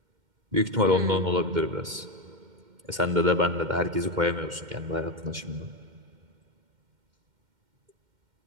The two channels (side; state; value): left; late; 2.1 ms